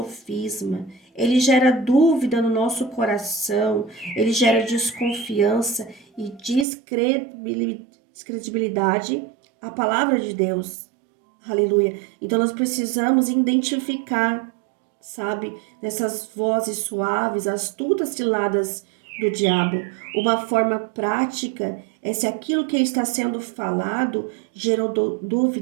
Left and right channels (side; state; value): left; drops out; at 6.7 s